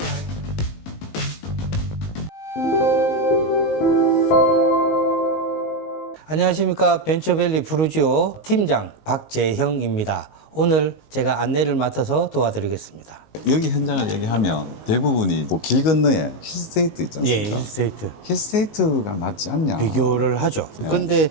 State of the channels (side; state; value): right; late; 19 ms